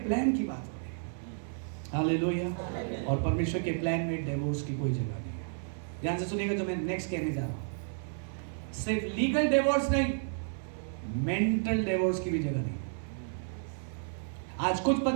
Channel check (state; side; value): silent; left; 57 dB below the other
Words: प्लान की बात हो रही है। हालेलुया। और परमेश्वर के प्लान में डिवोर्स की कोई जगह नहीं है। ध्यान से सुनिएगा जो मैं नेक्स्ट कहने जा रहा हूं। सिर्फ लीगल डिवोर्स नहीं, मेंटल डिवोर्स की भी जगह नहीं। आज कुछ